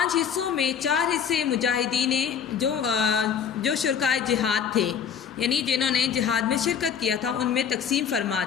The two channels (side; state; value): right; quieter; 7.6 dB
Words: حصوں میں 4 حصے مجاہدین جو شرکائے جہاد تھے، یعنی جنہوں نے جہاد میں شرکت کیا تھا، ان میں تقسیم فرما